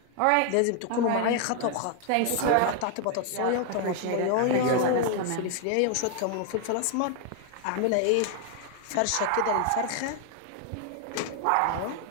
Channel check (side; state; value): both; different; correlation 0.00